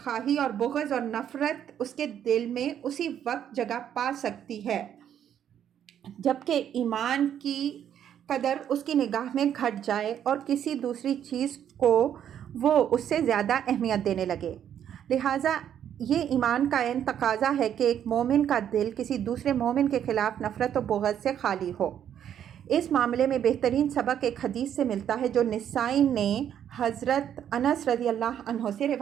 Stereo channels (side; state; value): left; quieter; 9.6 dB